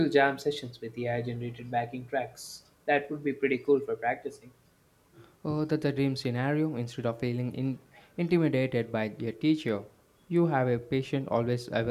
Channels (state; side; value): identical; both; correlation 1.00